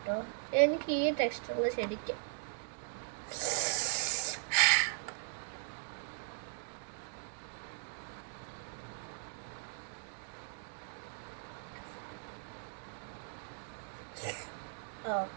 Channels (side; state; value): left; silent; digital silence